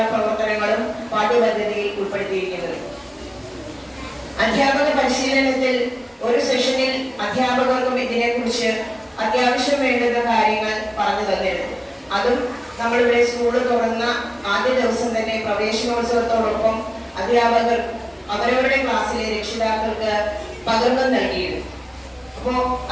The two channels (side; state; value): both; identical; correlation 1.00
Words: പ്രവർത്തനങ്ങളും പാഠ്യപദ്ധതിയിൽ ഉൾപ്പെടുത്തിയിരിക്കുന്നത്. അധ്യാപക പരിശീലനത്തിൽ ഒരു സെഷനിൽ അധ്യാപകർക്കും ഇതിനെക്കുറിച്ച് അത്യാവശ്യം വേണ്ടുന്ന കാര്യങ്ങൾ പറഞ്ഞു തന്നിരുന്നു. അതും നമ്മളിവിടെ സ്കൂള് തുറന്ന ആദ്യ ദിവസം തന്നെ പ്രവേശനോത്സവത്തോടൊപ്പം അധ്യാപകർ അവരവരുടെ ക്ലാസ്സിലെ രക്ഷിതാക്കൾക്ക് പകർന്നു നൽകിയിരുന്നു. അപ്പോ